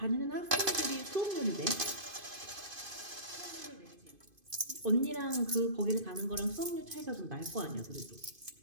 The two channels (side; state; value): left; late; 2.5 ms